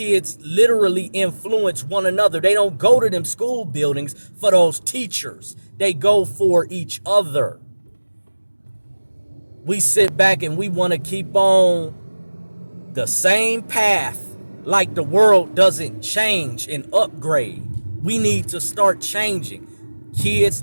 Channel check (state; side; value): inverted; both; correlation -1.00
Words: literally influence one another. They don't go to them school buildings for those teachers. They go for each other. We sit back and we want to keep on the same path like the world doesn't change and upgrade. We need to start changing. Kids